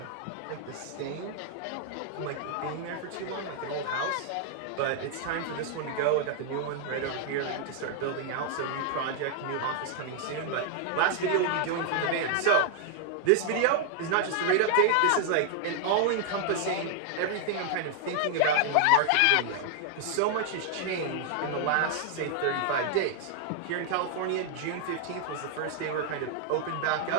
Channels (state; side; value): different; both; correlation 0.00